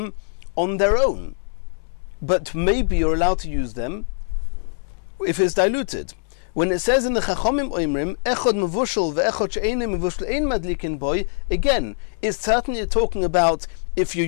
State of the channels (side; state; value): right; silent; digital silence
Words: on their own. But maybe you're allowed to use them if it's diluted. When it says in the Chachomim Oimrim, Echod Mevushel ve'echod she'einu mevushel ein madlikin boy, again, it's certainly talking about if you're